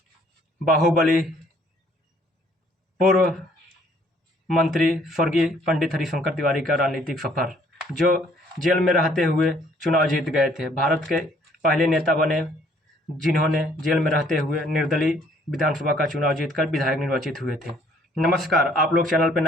बाहुबली पूर्व मंत्री स्वर्गीय पंडित हरिशंकर तिवारी का राजनीतिक सफर, जो जेल में रहते हुए चुनाव जीत गए थे। भारत के पहले नेता बने जिन्होंने जेल में रहते हुए निर्दलीय विधानसभा का चुनाव जीतकर विधायक निर्वाचित हुए थे। नमस्कार, आप लोग चैनल पर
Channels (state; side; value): normal; both; correlation 0.62